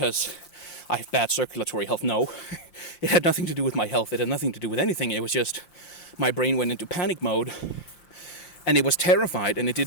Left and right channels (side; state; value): right; late; 5.8 ms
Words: I have bad circulatory health. No, it had nothing to do with my health. It had nothing to do with anything. It was just my brain went into panic mode and it was terrified and it